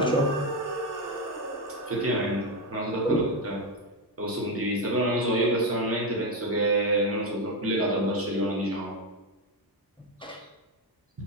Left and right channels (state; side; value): normal; both; correlation 0.09